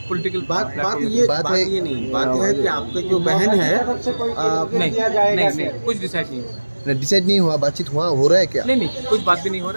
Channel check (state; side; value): inverted; both; correlation -1.00